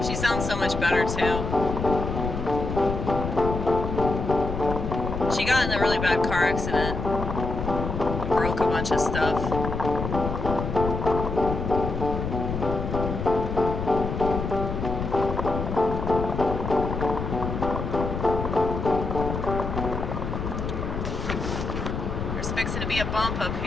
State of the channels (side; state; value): left; noise; rumble, 4 dB below the sound